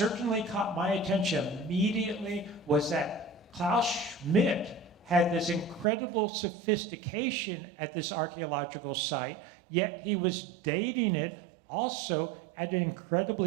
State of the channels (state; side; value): drops out; left; at 5.9 s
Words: caught my attention immediately was that Klaus Schmidt had this incredible sophistication at this archaeological site, yet he was dating it also at an